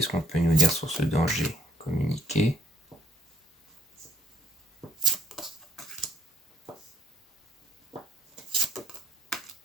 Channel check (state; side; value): normal; both; correlation 0.63